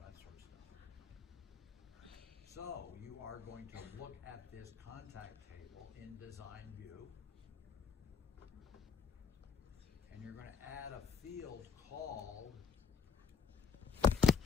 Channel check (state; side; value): quieter; right; 6.2 dB